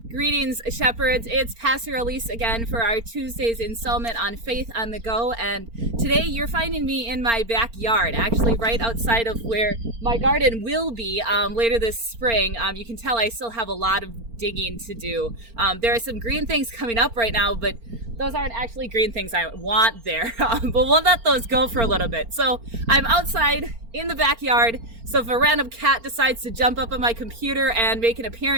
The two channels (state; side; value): late; left; 4.4 ms